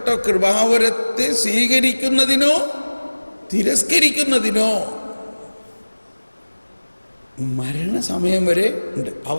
കൃപാവരത്തെ സ്വീകരിക്കുന്നതിനോ തിരസ്കരിക്കുന്നതിനോ മരണസമയം വരെ ഉണ്ട്.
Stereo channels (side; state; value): both; inverted; correlation -1.00